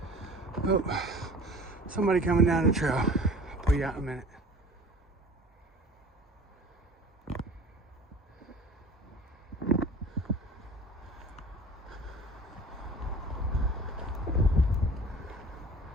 Oh, somebody coming down the trail. I'll pull you out in a minute.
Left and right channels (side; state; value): both; normal; correlation 0.42